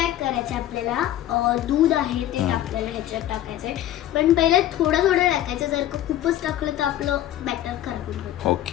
करायचं आपल्याला दूध आहे ते आपल्याला ह्याच्यात टाकायचंय. पण पहिले थोडं थोडं टाकायचं. जर का खूपच टाकलं तर आपलं बॅटर खराब होतं.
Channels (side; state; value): right; quieter; 12.9 dB